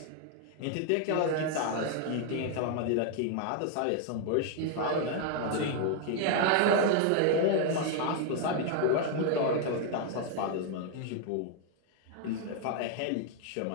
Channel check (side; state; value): both; different; correlation 0.00